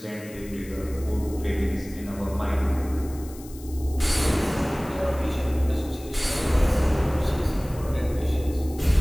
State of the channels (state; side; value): noise; left; hiss, 20 dB below the sound